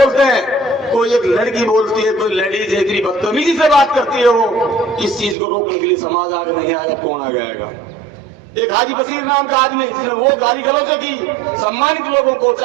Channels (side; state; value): left; drops out; at 5.4 s